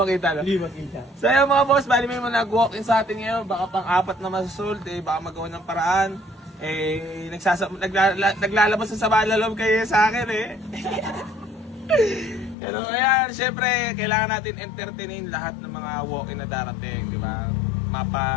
makita, no? Hindi makita. So yun mga boss, bali may mga nag-walk-in sa atin ngayon. Baka pang-apat na masusult, baka magawa ng paraan. Naglalabas sa sama na loob kayo sa akin Pero ayan, syempre, kailangan natin entertainin lahat ng mga walk-in na darating, di ba?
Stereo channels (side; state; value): right; drops out; at 12.6 s